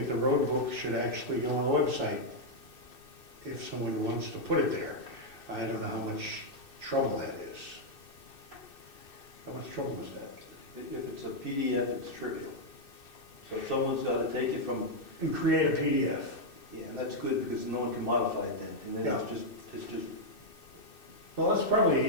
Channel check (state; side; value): late; right; 2.6 ms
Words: the road book should actually go on the website if someone wants to put it there. I don't know how much trouble that is. How much trouble is that? If it's a PDF, it's trivial. So if someone's got to take it from, And create a PDF. yeah, and that's good because no one can modify it then. And then it's just, Well,